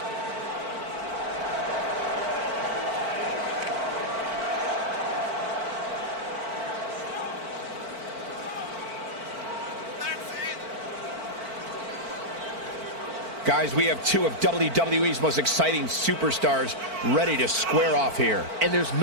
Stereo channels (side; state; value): left; late; 4.5 ms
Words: Guys, we have two of WWE's most exciting superstars ready to square off here. And there's